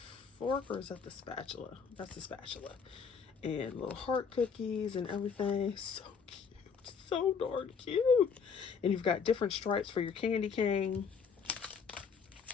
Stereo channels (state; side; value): quieter; right; 6.1 dB